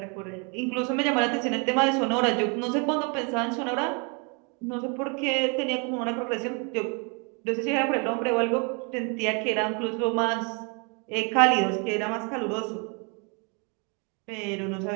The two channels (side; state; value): left; quieter; 34.3 dB